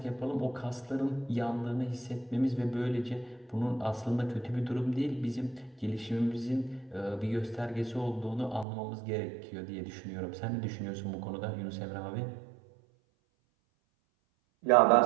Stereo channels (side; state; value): left; drops out; at 8.7 s